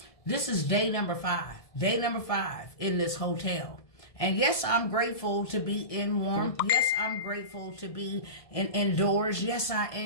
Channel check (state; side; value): late; right; 1.6 ms